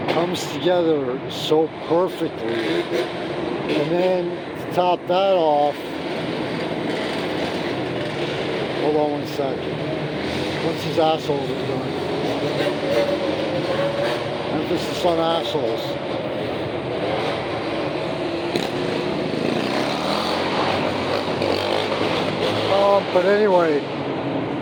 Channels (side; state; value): both; identical; correlation 1.00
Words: comes together so perfectly, and then to top that off, hold on one second, once these assholes are done, emphasis on assholes. But anyway,